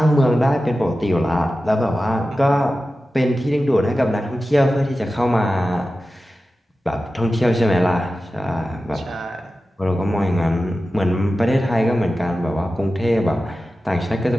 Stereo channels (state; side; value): normal; both; correlation 0.94